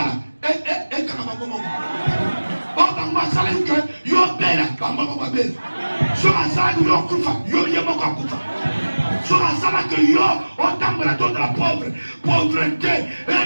Kaka bango moko. O bango sala que yo bela bango moko bela. So asala yo kufa yo yemo ko kufa. So asala que yo otambola de la pauvreté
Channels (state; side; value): inverted; both; correlation -1.00